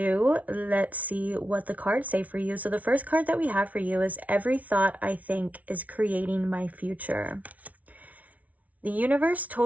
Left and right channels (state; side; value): late; left; 0.070 ms